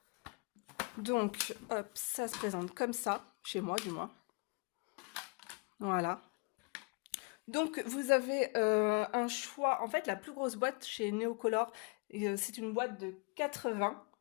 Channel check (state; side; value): quieter; right; 33.8 dB